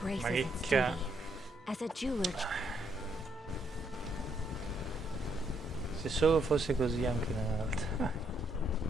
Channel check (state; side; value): normal; both; correlation 0.74